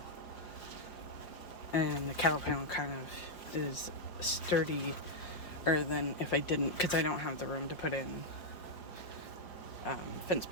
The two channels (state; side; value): late; right; 5.5 ms